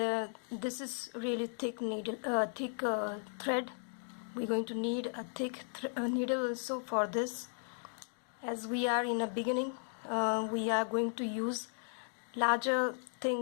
this is really thick needle, thread. We're going to need a thick needle also for this, as we are in a beginning. We are going to use larger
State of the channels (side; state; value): right; silent; digital silence